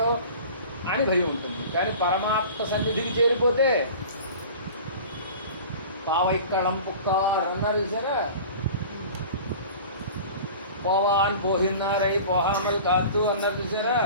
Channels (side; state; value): both; inverted; correlation -0.40